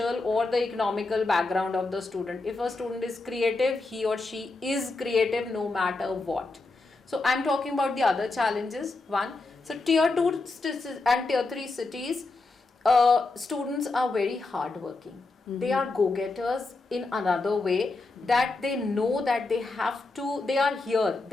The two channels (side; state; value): right; quieter; 3.4 dB